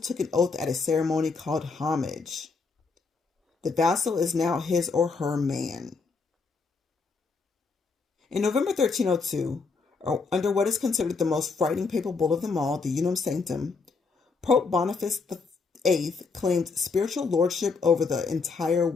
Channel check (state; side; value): quieter; right; 4.5 dB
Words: took an oath at a ceremony called homage. The vassal is now his or her man. In November 1302, under what is considered the most frightening papal bull of them all, the Unum Sanctum, Pope Boniface VIII claimed spiritual lordship over the entire